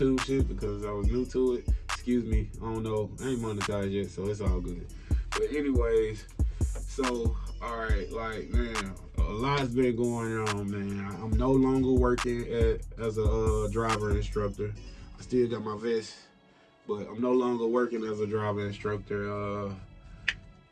shit, because I was new to it. Excuse me, I don't know, I ain't monetized yet, so it's all good. But anyways, so alright, like, man, a lot's been going on, man. I'm no longer working as a driver instructor. I still got my vest, but I'm no longer working as a driver instructor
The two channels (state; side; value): identical; both; correlation 1.00